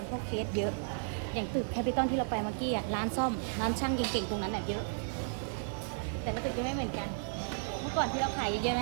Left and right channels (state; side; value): silent; left; digital silence